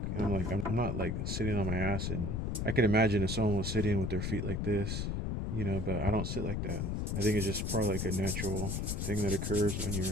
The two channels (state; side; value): noise; left; rumble, 1 dB below the sound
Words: and I'm not like sitting on my ass, and I can imagine if someone was sitting with their feet like this, but I don't sit like that. I think it's just probably like a natural thing that occurs when